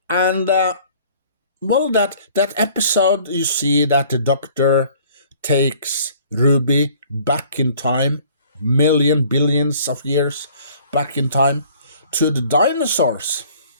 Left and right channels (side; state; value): both; inverted; correlation -0.54